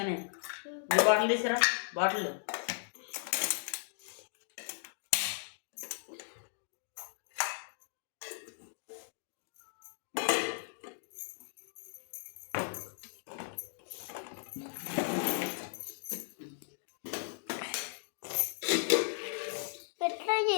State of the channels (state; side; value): silent; right; digital silence